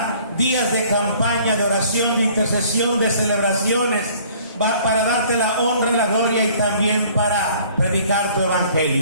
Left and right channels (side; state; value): both; inverted; correlation -0.55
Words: días de campaña, de oración, de intercesión, de celebraciones, para darte la honra, la gloria y también para predicar tu